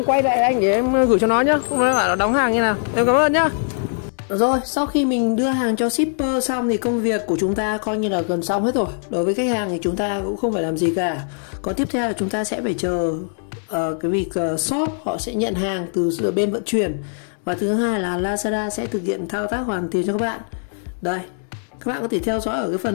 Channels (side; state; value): right; silent; 65 dB below the other